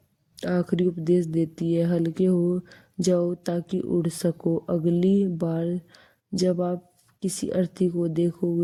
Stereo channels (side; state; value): both; identical; correlation 1.00